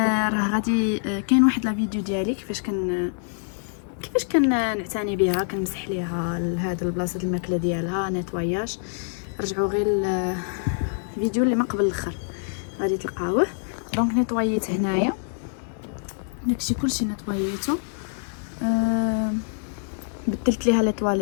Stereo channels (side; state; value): right; silent; 61 dB below the other